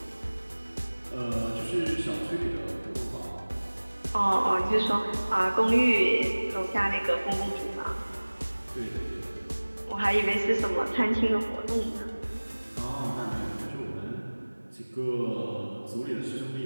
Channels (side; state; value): both; inverted; correlation -1.00